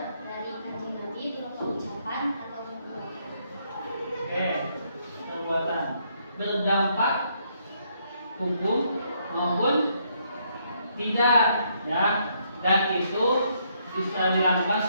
dari kanjeng Nabi berupa ucapan atau perbuatan. Oke, perbuatan berdampak hukum maupun tidak ya, dan itu bisa dilakukan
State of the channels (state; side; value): inverted; both; correlation -0.72